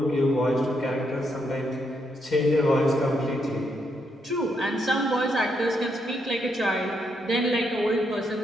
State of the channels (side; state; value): both; normal; correlation 0.78